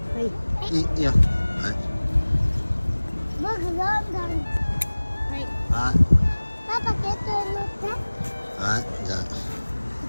い。いいよ。はい。僕どんどん。はい。はい。パパケットに乗って。はい、じゃ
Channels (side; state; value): both; inverted; correlation -1.00